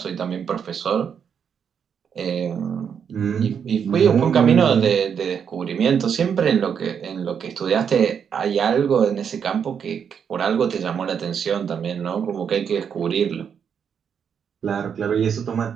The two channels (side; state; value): left; quieter; 7.4 dB